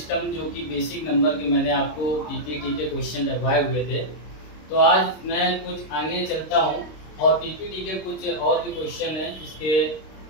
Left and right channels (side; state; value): right; late; 26 ms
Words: जो कि बेसिक नंबर के मैंने आपको पीपीटी के क्वेश्चन लगवाए हुए थे। तो आज मैं कुछ आगे चलता हूं और पीपीटी के कुछ और भी क्वेश्चन हैं इसके